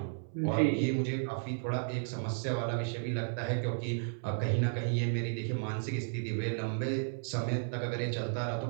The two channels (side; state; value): left; silent; 55 dB below the other